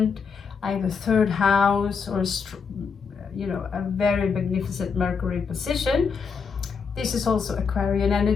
Either third house or a very magnificent Mercury position. This is also Aquarian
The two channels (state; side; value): quieter; right; 5.7 dB